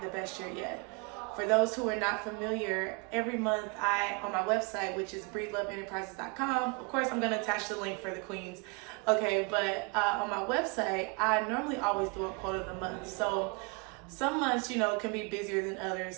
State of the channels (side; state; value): left; quieter; 32.2 dB